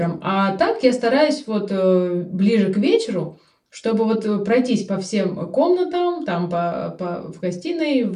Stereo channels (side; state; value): both; identical; correlation 1.00